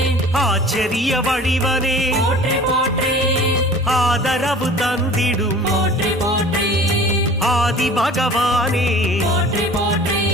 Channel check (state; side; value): normal; both; correlation 0.44